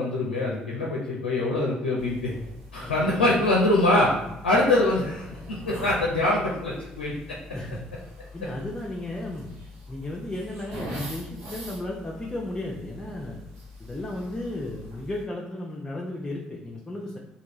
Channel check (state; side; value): normal; both; correlation 0.47